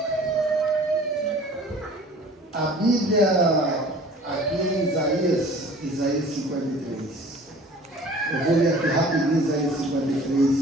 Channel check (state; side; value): normal; both; correlation 0.47